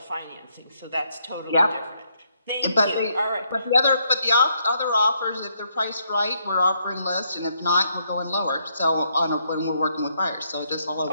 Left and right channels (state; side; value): inverted; both; correlation -0.74